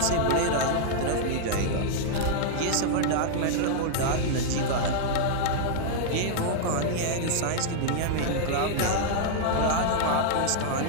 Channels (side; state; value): both; different; correlation -0.01